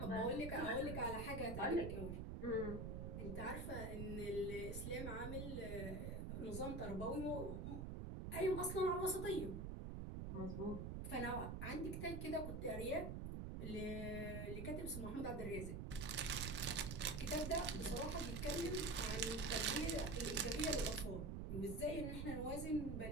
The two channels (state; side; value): noise; right; rumble, 4 dB below the sound